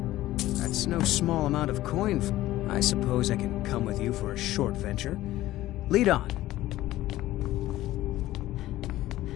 That's no small amount of coin. I suppose I can come with you for a short venture. Lead on.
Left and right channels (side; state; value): right; quieter; 15.6 dB